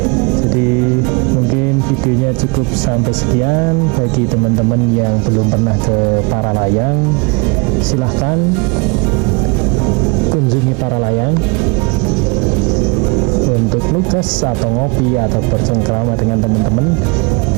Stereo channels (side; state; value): left; quieter; 29.9 dB